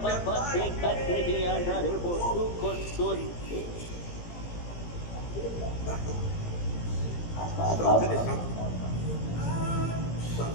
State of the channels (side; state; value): right; late; 17 ms